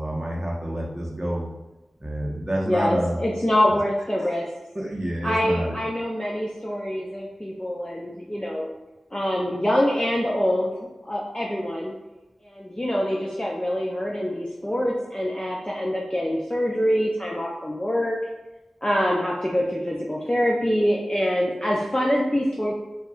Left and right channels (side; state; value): both; normal; correlation 0.96